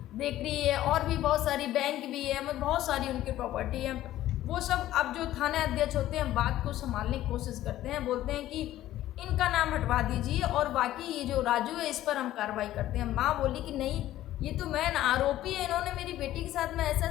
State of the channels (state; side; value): quieter; right; 14.0 dB